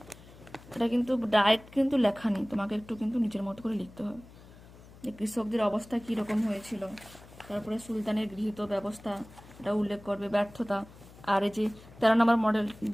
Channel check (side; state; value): left; noise; hum, 21 dB below the sound